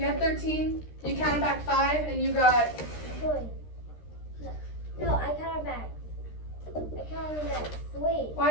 had 13, you counted back 5, and you got... 3. No, I counted back 3.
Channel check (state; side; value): late; right; 13 ms